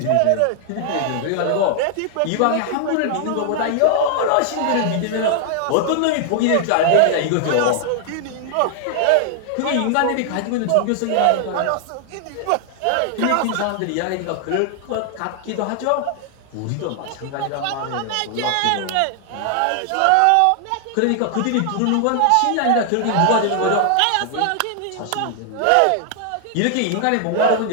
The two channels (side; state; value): both; different; correlation 0.00